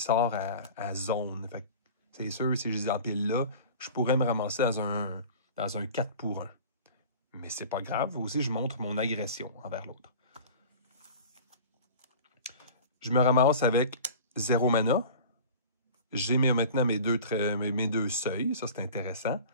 à zone. C'est sûr, si je les empile là, je pourrais me ramasser dans un 4 pour 1. Mais c'est pas grave. Aussi, je montre mon agression envers l'autre. Je me ramasse avec 0 mana. J'ai maintenant mes deux seuils. Ça, c'est intéressant.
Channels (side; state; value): both; inverted; correlation -0.39